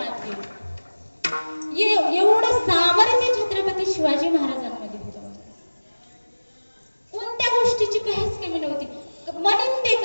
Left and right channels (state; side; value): inverted; both; correlation -1.00